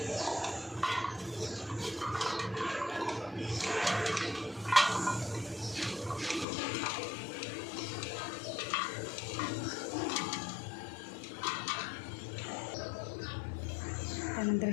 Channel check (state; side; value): drops out; right; at 6.5 s